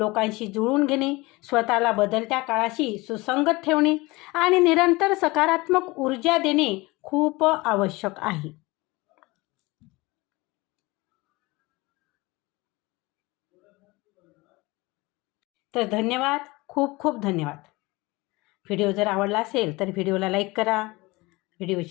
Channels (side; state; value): right; quieter; 22.7 dB